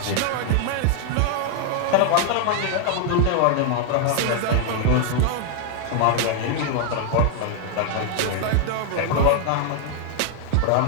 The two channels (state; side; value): different; both; correlation 0.00